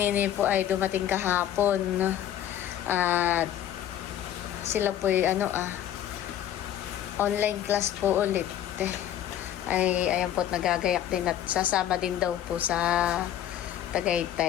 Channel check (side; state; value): right; quieter; 11.4 dB